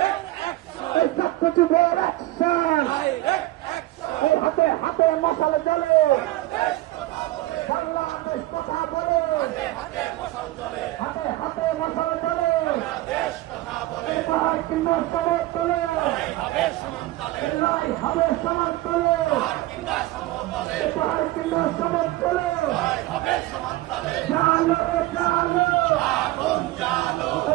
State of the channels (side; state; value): left; quieter; 17.3 dB